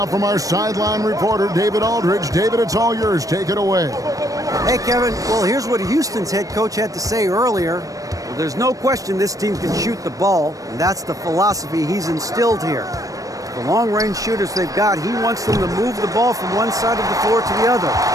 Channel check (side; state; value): left; late; 0.16 ms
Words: from our sideline reporter, David Aldridge. David, it's all yours. Take it away. Hey, Kevin. Well, here's what Houston's head coach had to say earlier. Well, there's no question this team can shoot the ball, and that's the philosophy he's instilled here. The long-range shooters they've got, he wants them to move the ball from one side of the floor to the other,